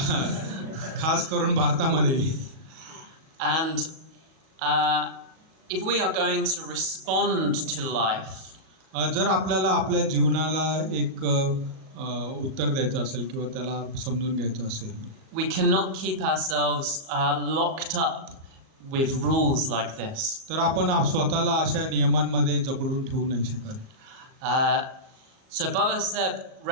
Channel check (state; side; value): late; left; 37 ms